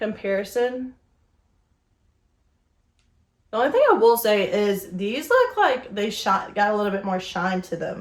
The only thing I will say is these look like they got a little bit more shine to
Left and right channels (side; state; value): both; identical; correlation 1.00